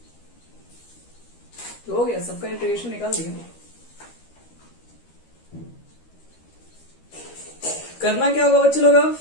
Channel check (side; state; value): right; late; 13 ms